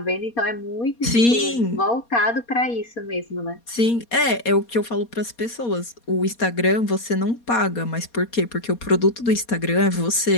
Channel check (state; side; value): late; right; 4.2 ms